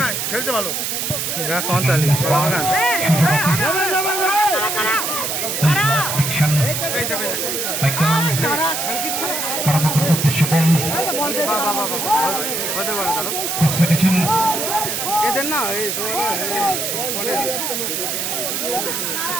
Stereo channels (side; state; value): right; noise; hiss, 2 dB below the sound